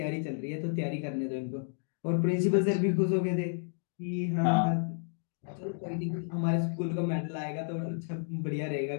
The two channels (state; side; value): silent; right; 57 dB below the other